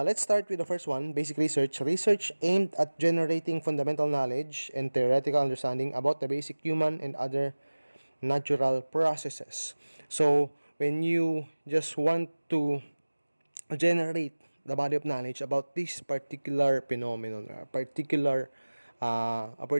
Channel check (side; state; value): both; inverted; correlation -1.00